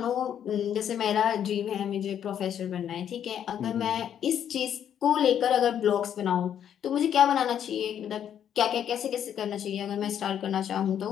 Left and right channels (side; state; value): right; quieter; 9.4 dB